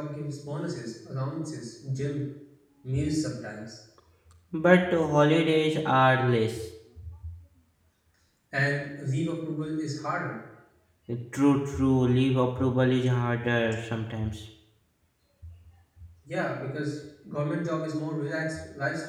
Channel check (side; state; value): both; identical; correlation 1.00